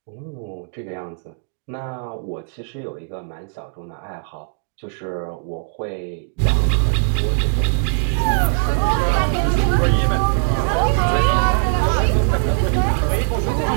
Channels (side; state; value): left; silent; digital silence